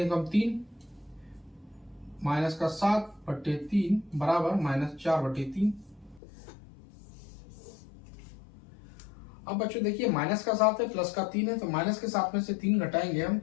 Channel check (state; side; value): drops out; right; at 6.2 s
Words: 3 माइनस का 7 बटे 3 बराबर माइनस 4 बटे 3। अब बच्चों देखिए माइनस का 7 है, प्लस का 3 है, तो माइनस के 7 में से 3 घटाएंगे हम